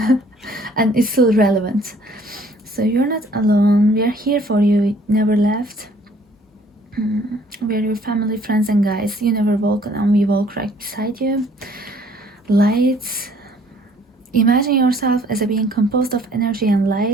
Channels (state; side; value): normal; both; correlation 0.59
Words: And it's still relevant. So you're not alone. We are here for you. Never left. We are your family, friends, and guides. You never walk alone. We walk right beside you. Lights. Imagine yourself as a being composed of energy and